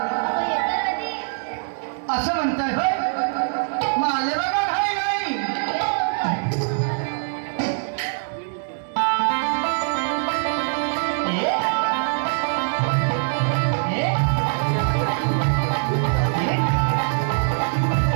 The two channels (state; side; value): silent; left; 64 dB below the other